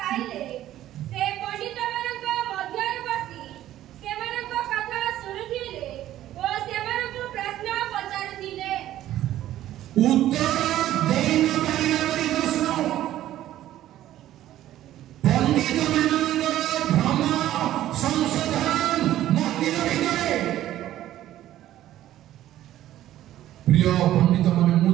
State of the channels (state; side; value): quieter; left; 13.3 dB